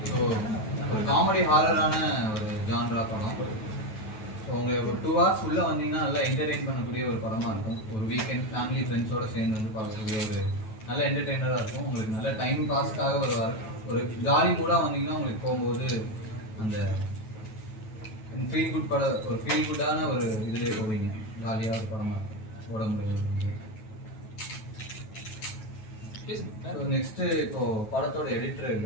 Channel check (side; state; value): right; late; 9.2 ms